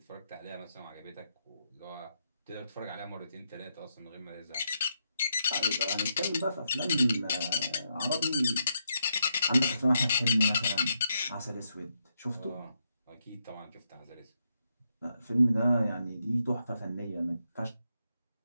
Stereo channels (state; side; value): inverted; both; correlation -0.81